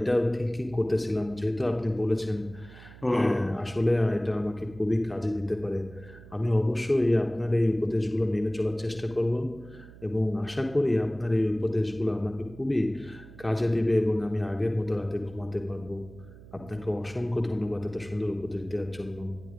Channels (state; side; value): noise; right; hum, 19 dB below the sound